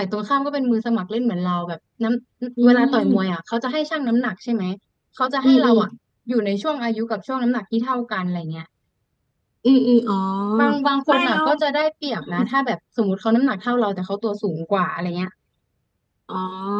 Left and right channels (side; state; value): both; identical; correlation 1.00